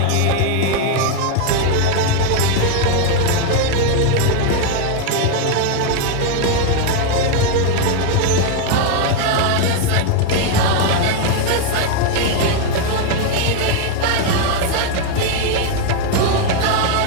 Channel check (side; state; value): both; different; correlation 0.01